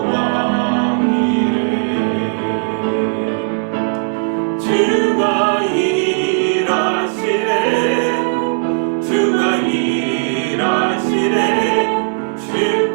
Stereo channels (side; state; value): left; silent; digital silence